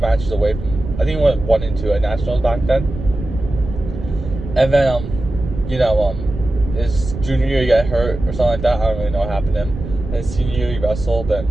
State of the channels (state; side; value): noise; right; rumble, 9 dB below the sound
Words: away from. I think he went 1 and 2 at nationals back then. And then his junior year he got hurt or something like that. I don't really know what happened to him. And his senior year he wrestled, and